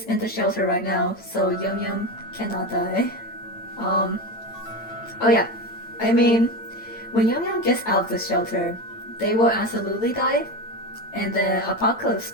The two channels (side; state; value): right; late; 8.9 ms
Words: in the shelter right now, so Yum Yum cannot die. Oh yeah. I mean, when Yum Yum gets out of the shelter, they will absolutely die, and the apocalypse